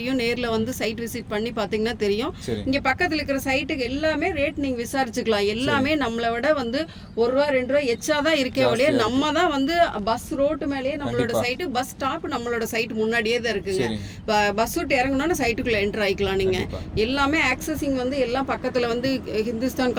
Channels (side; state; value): both; identical; correlation 1.00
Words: நேர்ல வந்து சைட் விசிட் பண்ணி பாத்தீங்கன்னா தெரியும். இங்க பக்கத்துல இருக்கிற சைட்டுக்கு எல்லாமே ரேட் நீங்க விசாரிச்சுக்கலாம். எல்லாமே நம்மளை விட வந்து 1 ரூபா 2 ரூபா எச்சாதான் இருக்கே ஒழிய நம்ம தான் வந்து பஸ் ரோட்டு மேலேயே நம்மளோட சைட்டு, பஸ் ஸ்டாப் நம்மளோட சைட் முன்னாடியே தான் இருக்குங்க. பஸ் விட்டு இறங்கணும்னா சைட்டுக்குள்ள என்டர் ஆயிக்கலாம். நீங்க எல்லாமே ஆக்சஸிங் வந்து எல்லாம் பக்கத்துல வந்து Hindustan